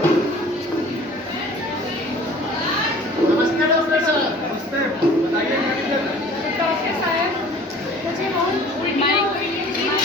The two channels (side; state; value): both; normal; correlation 0.48